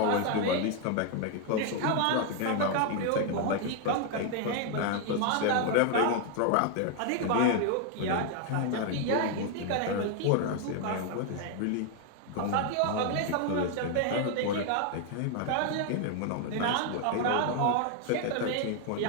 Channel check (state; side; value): different; both; correlation 0.00